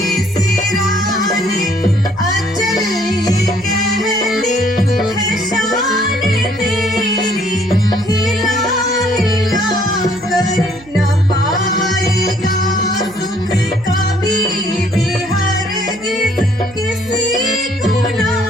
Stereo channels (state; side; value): noise; right; hum, 22 dB below the sound